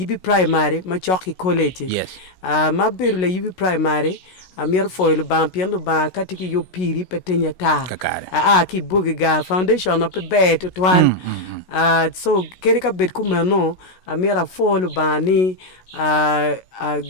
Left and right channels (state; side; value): late; right; 16 ms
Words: primary ma choki college Yes. ma beru la yibi primary a mier foil ban pien lo ban katiki yo piri petenya ta Kakare. ki bugiga foundation of be to twan so keri ka bet kumano a miera foil bani